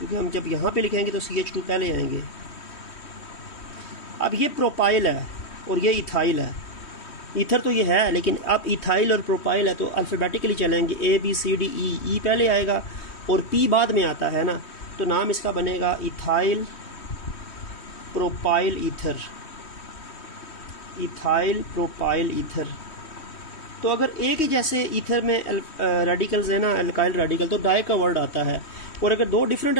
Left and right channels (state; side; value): late; right; 3.1 ms